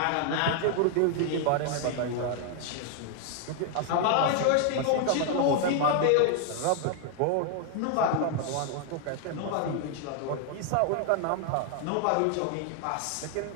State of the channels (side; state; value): both; different; correlation 0.00